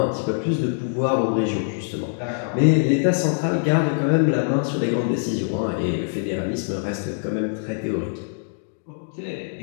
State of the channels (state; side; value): silent; right; digital silence